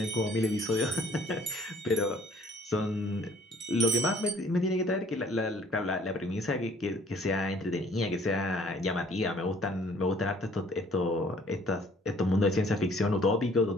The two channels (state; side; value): normal; both; correlation 0.58